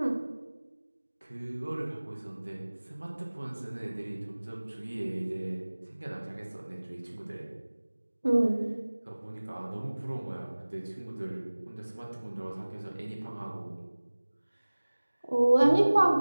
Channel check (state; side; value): inverted; both; correlation -1.00